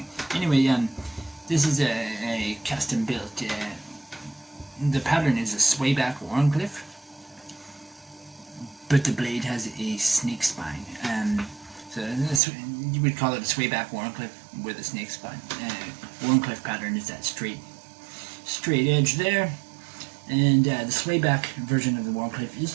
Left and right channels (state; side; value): drops out; left; at 12.4 s